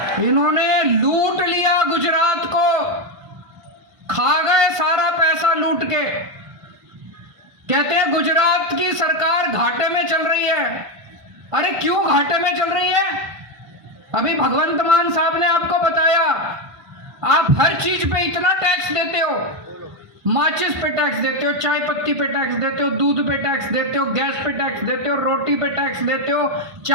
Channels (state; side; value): late; left; 1.5 ms